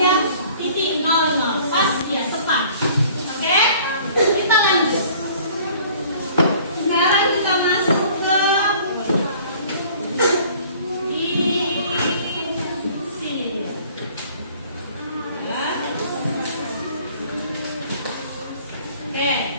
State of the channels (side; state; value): both; inverted; correlation -0.52